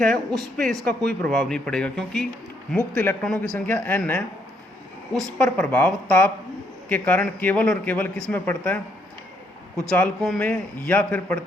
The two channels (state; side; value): normal; both; correlation 0.72